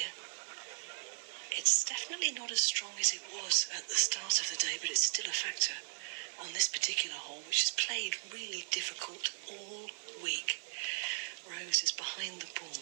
It's definitely not as strong as it was at the start of the day, but it's still a factor on this particular hole, which has played really difficult all week. Rose is behind the ball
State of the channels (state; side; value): silent; left; 53 dB below the other